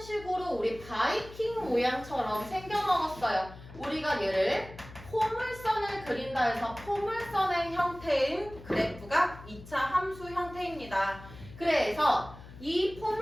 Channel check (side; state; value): left; noise; hum, 17 dB below the sound